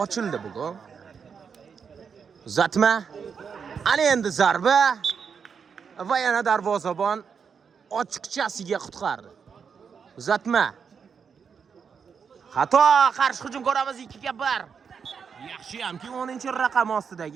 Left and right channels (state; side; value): quieter; left; 6.4 dB